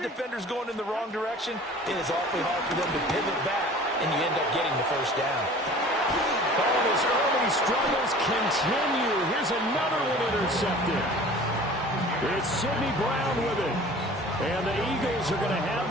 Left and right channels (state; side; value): normal; both; correlation 0.45